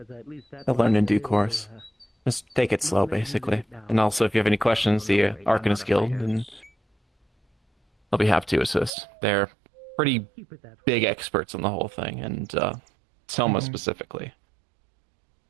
at least that I'll learn in way due it will, course. Just take it slow, basically. And also, if you have any questions, the Arcanist Guild, and I'll be happy to assist. They're pretty keep it that way. big experts on the whole thing, and Selma Mhm. specifically.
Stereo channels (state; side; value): drops out; left; at 9.0 s